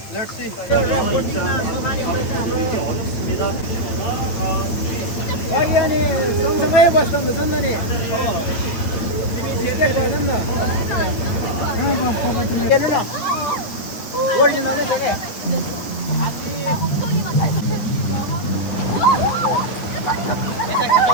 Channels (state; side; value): late; right; 9.1 ms